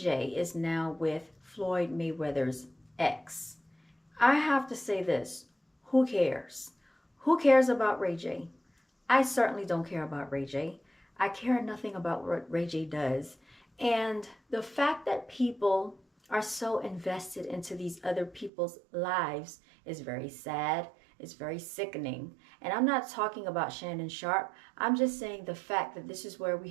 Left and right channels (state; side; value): drops out; left; at 18.5 s